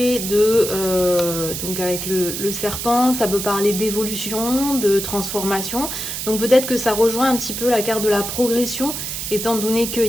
de, donc avec le serpent, ça peut parler d'évolution, de transformation. Donc peut-être que ça rejoint un petit peu la carte de la progression, étant donné qu'il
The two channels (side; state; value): right; noise; hiss, 5 dB below the sound